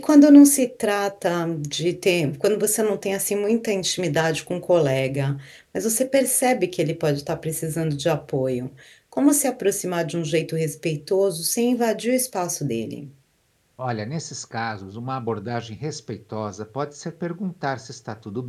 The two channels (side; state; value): both; identical; correlation 1.00